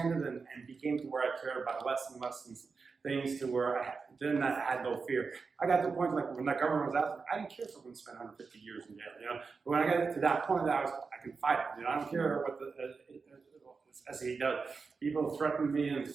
and became to where I cared about less and less things to where I had no fear. I got to the point, like when the government was out, I didn't care if someone spent 150 years in jail, But when I got to that point, I can fight it, I don't care what the SE does. People threaten me and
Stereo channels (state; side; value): quieter; left; 4.8 dB